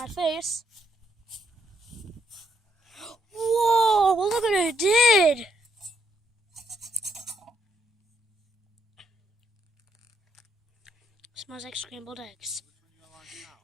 face. Whoa, well, look what it did. Smells like scrambled eggs.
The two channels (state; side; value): normal; both; correlation 0.74